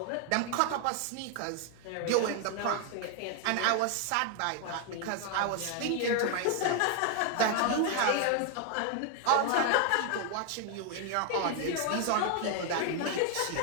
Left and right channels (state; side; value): different; both; correlation 0.01